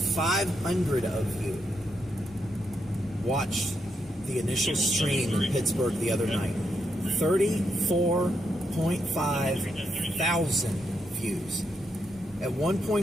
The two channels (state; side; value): normal; both; correlation 0.81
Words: of you watched the initial stream in Pittsburgh the other night. 34.5 thousand views. At one